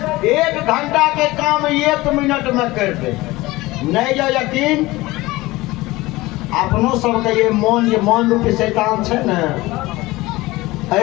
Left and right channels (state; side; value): quieter; right; 19.8 dB